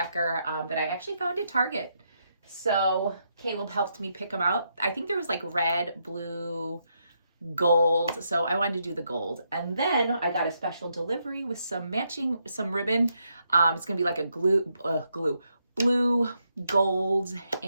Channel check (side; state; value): both; inverted; correlation -0.80